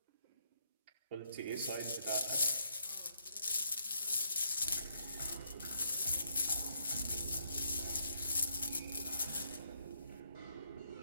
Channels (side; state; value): both; inverted; correlation -0.73